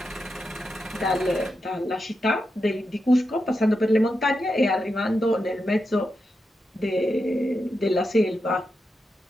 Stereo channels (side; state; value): both; normal; correlation 0.87